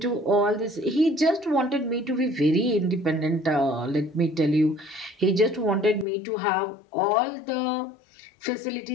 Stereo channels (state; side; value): drops out; right; at 6.1 s